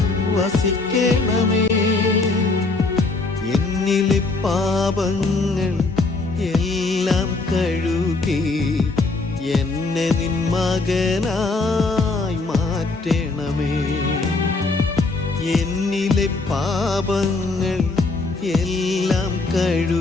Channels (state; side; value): quieter; right; 3.6 dB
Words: വസിക്കണമേ. എന്നിലെ പാപങ്ങൾ എല്ലാം കഴുകി എന്നെ നിൻ മകനായി മാറ്റണമേ. എന്നിലെ പാപങ്ങൾ എല്ലാം